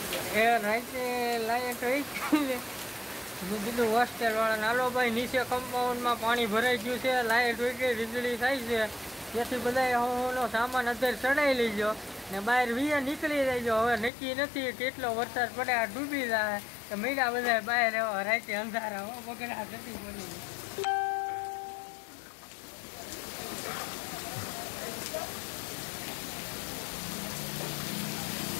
એ રાતે લાઈટ હોય મેં કીધું હોસ્ટેલ વાળાને હાલો ભાઈ નીચે કમ્પાઉન્ડમાં પાણી ભરાઈ ગયું છે લાઈટ હોય કે વીજળી થાય છે તેથી બધા હોનો સામાન અત્યારે ચડાવી લેજો ને બહાર વીએ નીકળી જજો હવે નક્કી નથી કેટલો વરસાદ પડે આ ડૂબી જાય તો મીડા બધા બહાર એવા રાતે અંધારા બગડા થતી બની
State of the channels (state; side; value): drops out; right; at 14.1 s